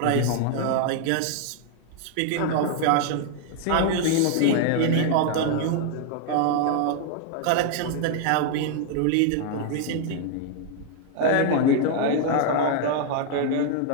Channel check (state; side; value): different; both; correlation 0.00